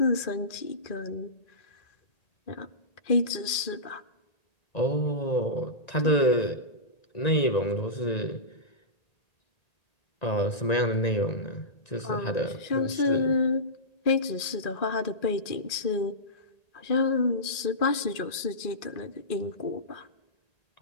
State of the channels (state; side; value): late; right; 1.8 ms